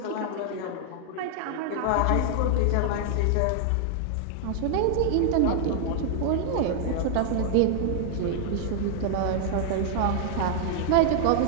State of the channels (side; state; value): both; different; correlation 0.00